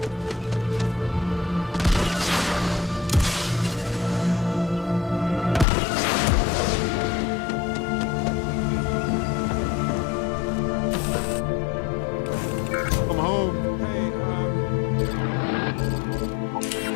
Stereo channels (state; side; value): drops out; right; at 5.7 s